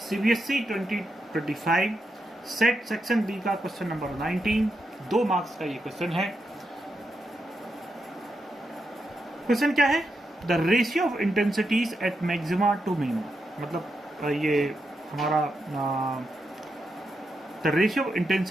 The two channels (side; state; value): both; normal; correlation 0.85